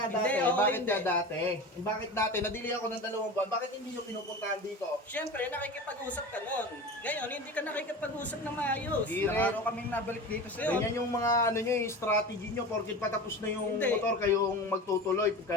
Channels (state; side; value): normal; both; correlation 0.31